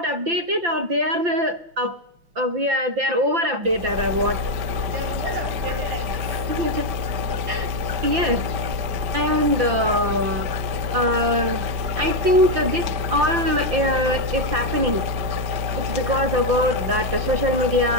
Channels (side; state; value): left; late; 5.2 ms